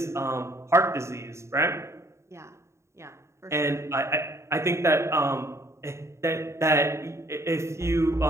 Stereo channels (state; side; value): late; left; 0.14 ms